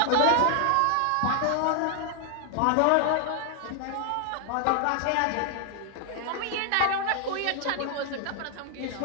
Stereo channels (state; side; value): different; both; correlation 0.00